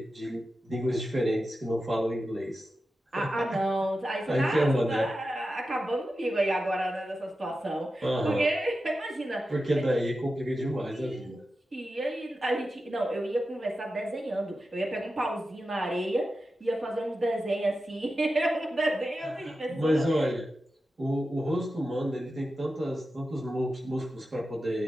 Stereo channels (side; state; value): both; normal; correlation 0.92